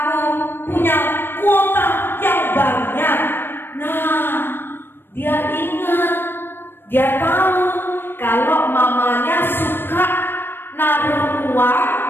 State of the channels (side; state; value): right; late; 0.099 ms